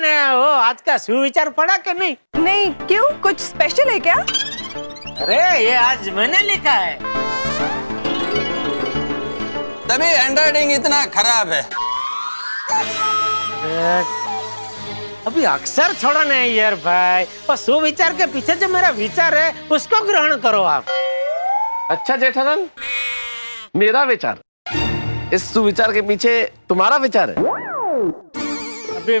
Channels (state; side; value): inverted; both; correlation -1.00